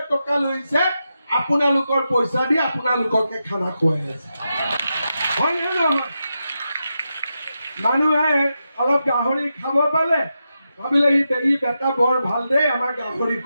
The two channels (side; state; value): both; inverted; correlation -0.87